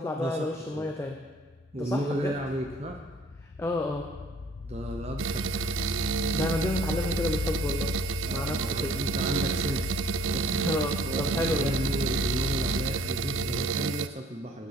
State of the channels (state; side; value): normal; both; correlation 0.55